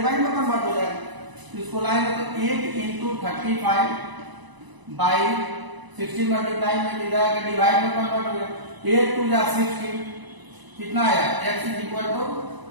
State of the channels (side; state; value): left; late; 1.0 ms